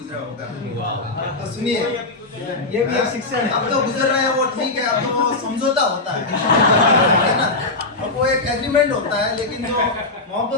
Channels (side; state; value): right; quieter; 3.2 dB